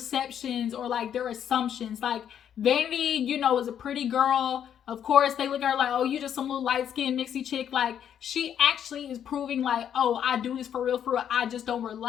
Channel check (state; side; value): quieter; right; 9.2 dB